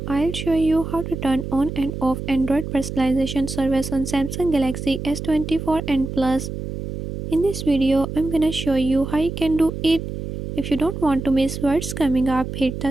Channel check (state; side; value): noise; right; hum, 7 dB below the sound